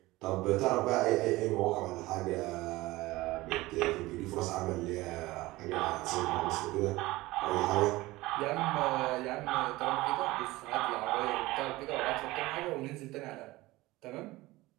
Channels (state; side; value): quieter; left; 19.4 dB